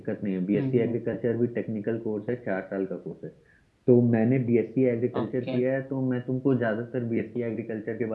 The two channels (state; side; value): identical; both; correlation 1.00